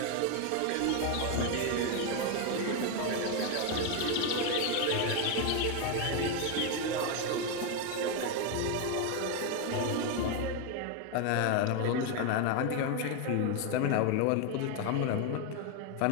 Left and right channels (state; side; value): different; both; correlation 0.01